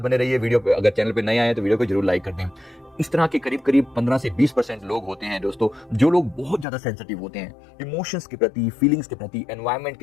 रहिए वीडियो पे। अगर चैनल पे नए आए तो वीडियो को जरूर लाइक कर दें। इस तरह के करीब करीब 15 से 20% लोग होते हैं दोस्तों, जो लोग बहुत ज्यादा सेंसिटिव होते हैं इमोशंस के प्रति, फीलिंग्स के प्रति, एनवायरनमेंट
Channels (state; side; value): drops out; right; at 6.7 s